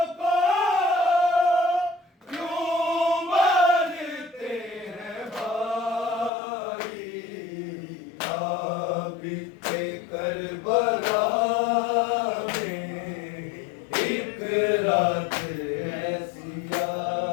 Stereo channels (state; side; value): drops out; right; at 6.3 s